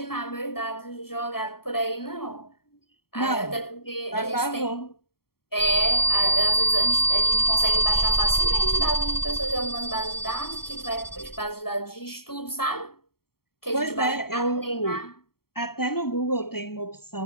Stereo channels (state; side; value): late; right; 0.94 ms